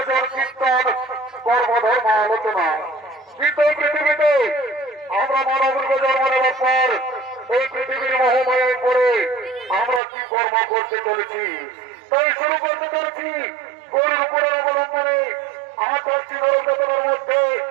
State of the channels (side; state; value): left; drops out; at 10.0 s